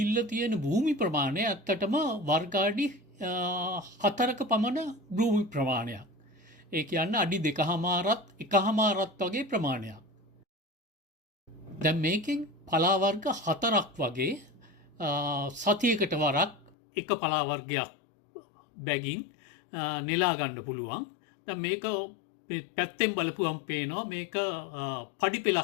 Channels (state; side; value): drops out; right; at 16.8 s